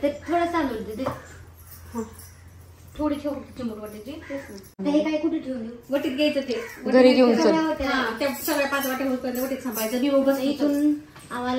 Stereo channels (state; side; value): identical; both; correlation 1.00